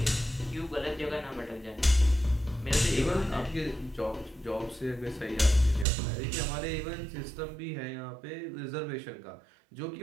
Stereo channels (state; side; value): drops out; left; at 5.9 s